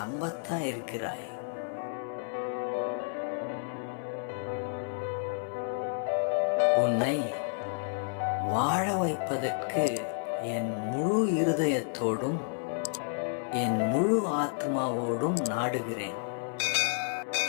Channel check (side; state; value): right; silent; 57 dB below the other